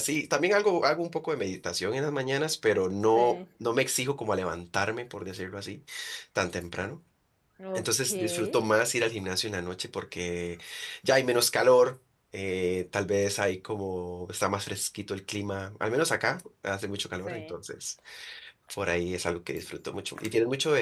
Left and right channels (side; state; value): both; identical; correlation 1.00